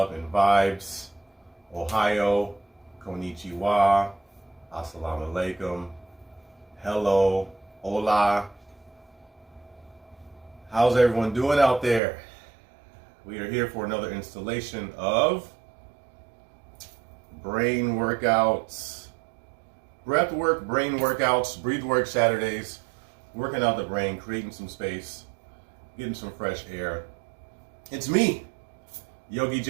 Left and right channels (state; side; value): drops out; left; at 12.0 s